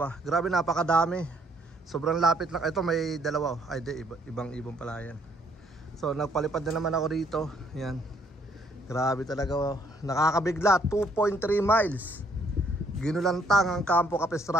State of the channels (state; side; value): normal; both; correlation 0.66